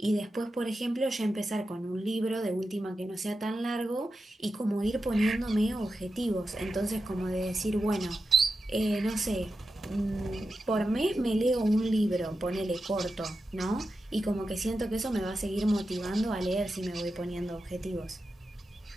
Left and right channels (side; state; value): both; normal; correlation 0.90